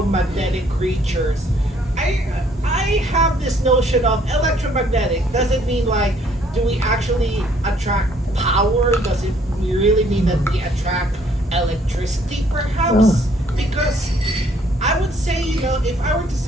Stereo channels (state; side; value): normal; both; correlation 0.64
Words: creatures, I have this notion of electromagnetic. Does it mean like, do we actually attract power? Does it really mean that we attract electricity, perhaps? Because I would say, if I were to